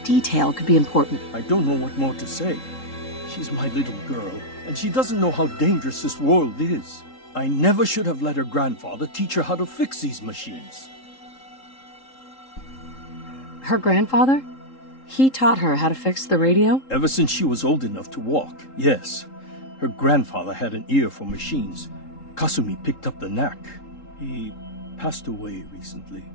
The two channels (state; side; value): late; right; 3.8 ms